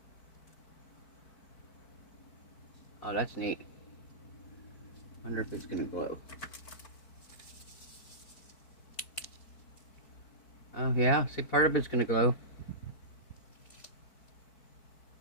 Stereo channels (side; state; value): right; late; 4.6 ms